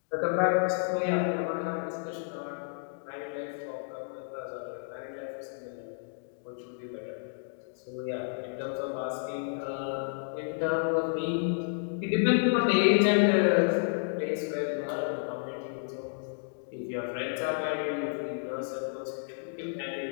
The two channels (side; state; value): right; silent; digital silence